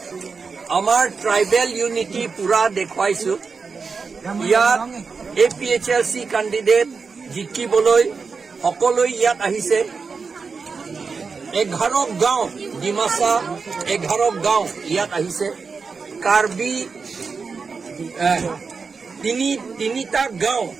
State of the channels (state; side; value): quieter; left; 5.0 dB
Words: আমাৰ tribal unity পুৰা দেখুৱাইছো ইয়াত APHLC কেণ্ডিডেট জিকিবলৈ সকলো ইয়াত আহিছে 11 গাঁও ডিমাচা 11 গাঁও ইয়াত আহিছে কাৰ্বি তিনিটা গাঁও